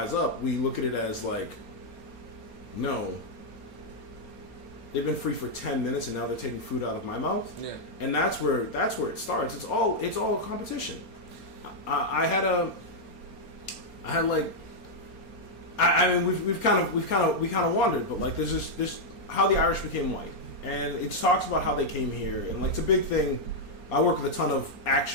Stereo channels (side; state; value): right; late; 4.3 ms